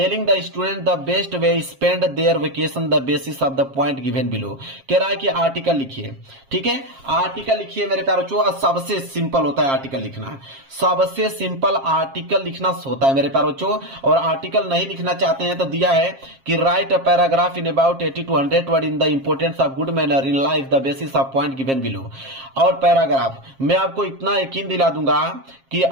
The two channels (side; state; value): left; late; 7.4 ms